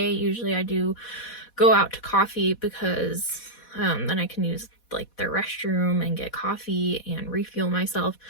usually I do go out to coffee because then I can use like their restroom and get coffee and refuel myself.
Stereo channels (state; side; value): late; right; 4.1 ms